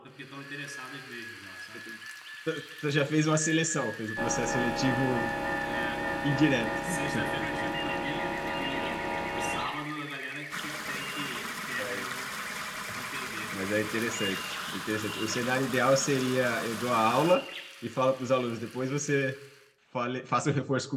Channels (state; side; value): identical; both; correlation 1.00